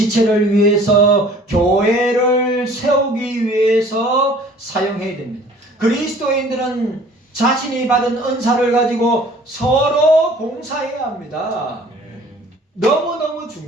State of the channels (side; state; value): both; normal; correlation 0.51